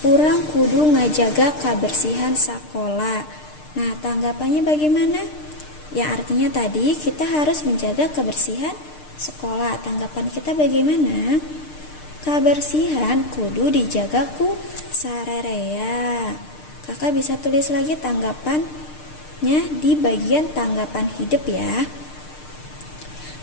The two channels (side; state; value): right; late; 6.6 ms